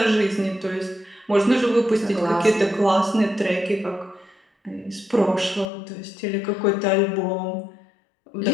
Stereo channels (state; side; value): drops out; right; at 5.7 s